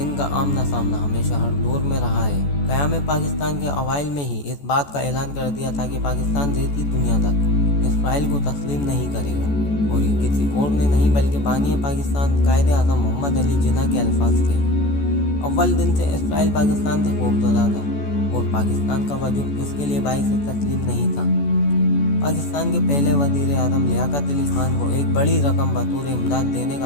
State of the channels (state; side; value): late; right; 14 ms